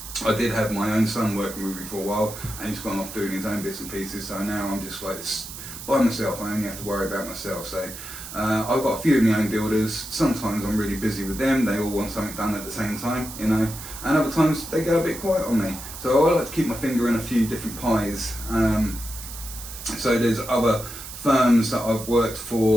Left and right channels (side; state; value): right; noise; hiss, 11 dB below the sound